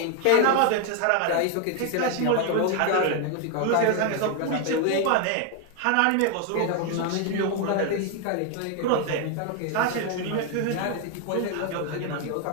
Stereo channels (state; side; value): different; both; correlation 0.01